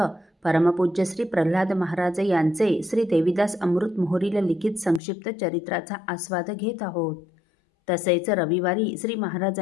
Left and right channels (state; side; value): drops out; right; at 5.0 s